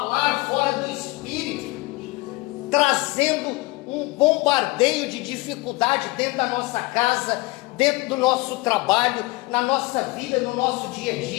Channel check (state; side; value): quieter; right; 23.0 dB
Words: fora do Espírito, trazendo um bombardeio de dificuldade dentro da nossa casa, dentro do nosso trabalho, na nossa vida, no nosso dia a